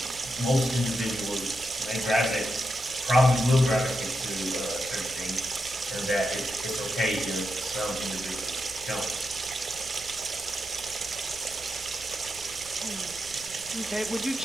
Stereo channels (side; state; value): right; noise; rumble, 20 dB below the sound